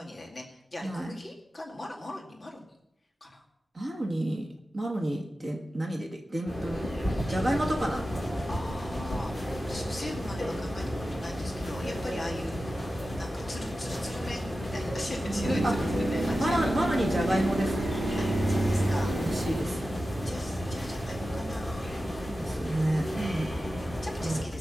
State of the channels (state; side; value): normal; both; correlation 0.93